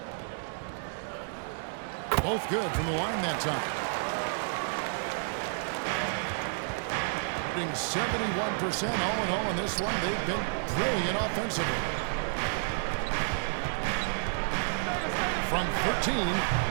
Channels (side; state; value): left; silent; digital silence